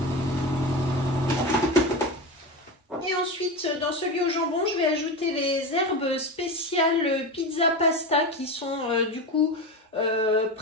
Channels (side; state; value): both; normal; correlation 0.22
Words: Et ensuite, dans celui au jambon, je vais ajouter les herbes spéciales pizza pasta qui sont du coup